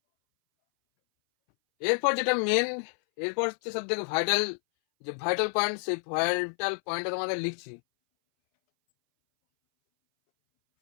এরপর যেটা মেন, এরপর হচ্ছে সব থেকে ভাইটাল, যে vital point, সেই ভাইটাল পয়েন্টটা তোমাদের লিখছি।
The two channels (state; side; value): silent; right; 59 dB below the other